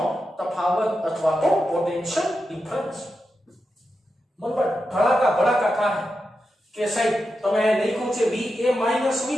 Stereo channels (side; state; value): both; normal; correlation 0.89